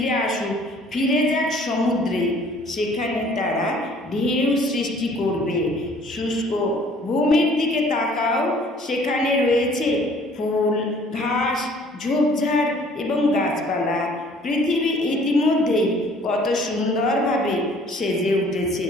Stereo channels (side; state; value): both; normal; correlation 0.56